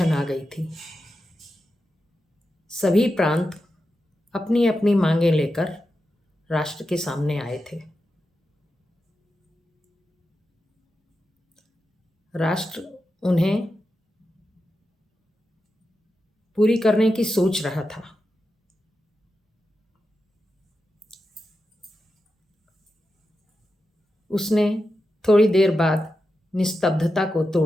आ गई थी। सभी प्रांत अपनी अपनी मांगें लेकर राष्ट्र के सामने आए थे। राष्ट्र उन्हें पूरी करने की सोच रहा था। उसने थोड़ी देर बाद निस्तब्धता को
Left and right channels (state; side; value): normal; both; correlation 0.89